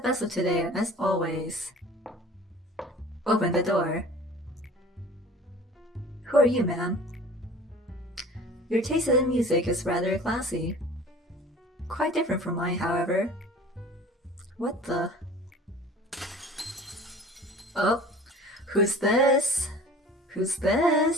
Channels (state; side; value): normal; both; correlation 0.44